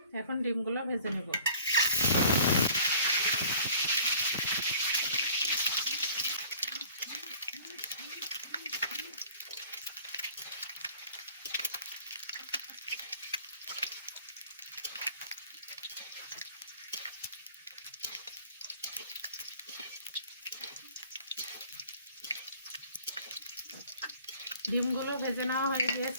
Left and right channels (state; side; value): inverted; both; correlation -0.50